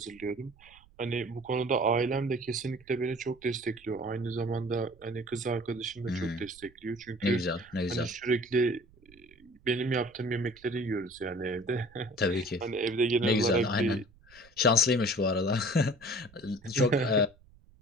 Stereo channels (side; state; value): right; noise; rumble, 27 dB below the sound